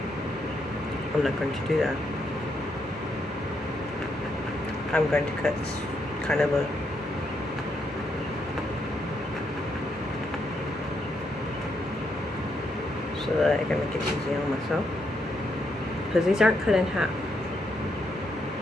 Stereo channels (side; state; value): both; normal; correlation 0.78